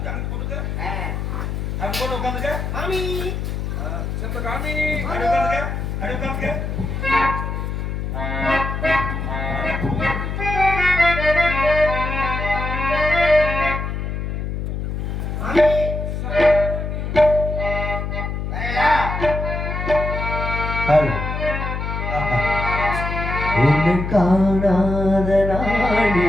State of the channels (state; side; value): noise; left; hum, 3 dB below the sound